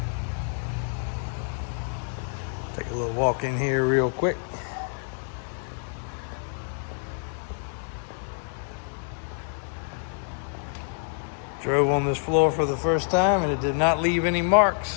Take a little walk in here real quick. Drove on this floor for the first time, and it did not leave any marks.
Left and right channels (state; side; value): silent; right; 60 dB below the other